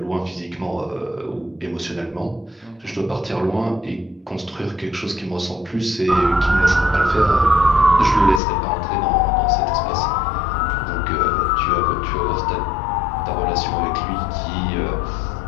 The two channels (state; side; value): drops out; right; at 8.4 s